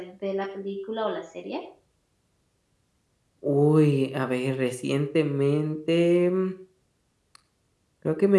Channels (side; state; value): both; identical; correlation 1.00